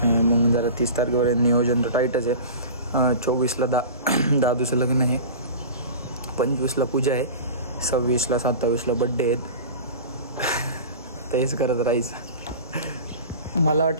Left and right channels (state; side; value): inverted; both; correlation -0.35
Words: मग जरा 30 तारखेपर्यंत नियोजन तर टाईटच आहे. 24ला दादूचं लग्न आहे. 25ला पूजा आहे. 26ला 27ला बड्डे आहेत. तेच करत राहायचं. मला